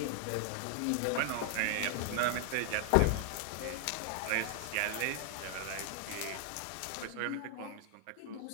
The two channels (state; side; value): different; both; correlation 0.00